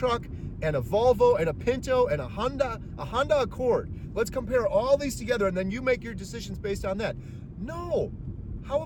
and a Volvo and a Pinto and a Honda Accord. Let's compare all these together and then you make your decisions based on that. No. How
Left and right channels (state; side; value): identical; both; correlation 1.00